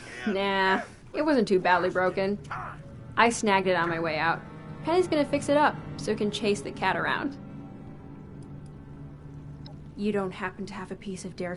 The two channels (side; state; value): both; identical; correlation 1.00